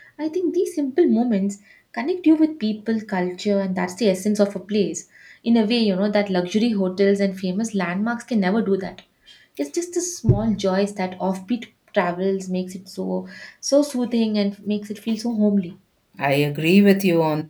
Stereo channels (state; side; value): identical; both; correlation 1.00